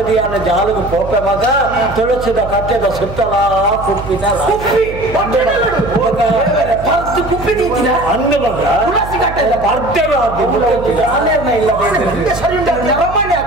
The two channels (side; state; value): right; noise; hum, 11 dB below the sound